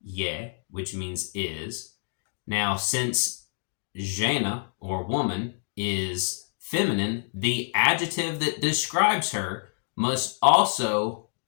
je, which means is. Now, since žena or woman is feminine, the adjective that describes her must also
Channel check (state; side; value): silent; right; digital silence